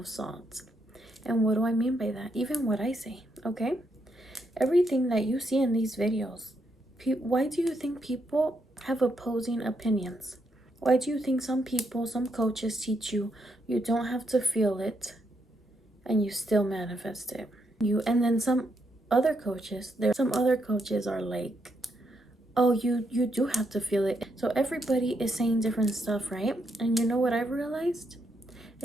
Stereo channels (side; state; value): both; normal; correlation 0.79